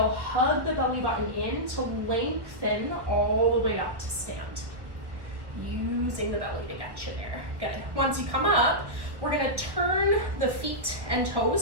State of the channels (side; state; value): left; late; 1.4 ms